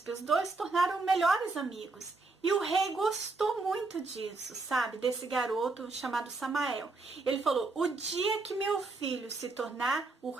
os dois se tornaram melhores amigos. E o rei gostou muito disso, sabe? Desse garoto chamado Samael. Ele falou: o dia que meu filho se tornar o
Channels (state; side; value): quieter; left; 3.6 dB